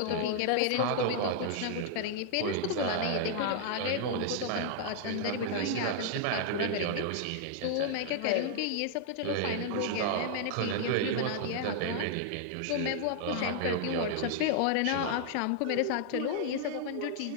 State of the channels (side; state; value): both; different; correlation -0.01